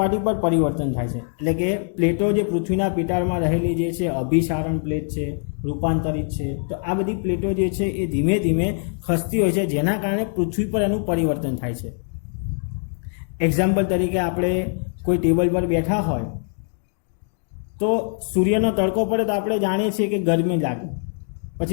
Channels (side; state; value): right; silent; 58 dB below the other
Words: પર પરિવર્તન થાય છે. એટલે કે પ્લેટો જે પૃથ્વીના પેટાળમાં રહેલી જે છે અભિસારણ પ્લેટ છે, રૂપાંતરિત છે, તો આ બધી પ્લેટો જે છે એ ધીમે ધીમે ખસતી હોય છે, જેના કારણે પૃથ્વી પર એનું પરિવર્તન થાય છે. એક્ઝામ્પલ તરીકે આપણે કોઈ ટેબલ પર બેઠા હોય તો સૂર્યનો તડકો પડે તો આપણે જાણીએ છીએ કે ગરમી લાગે,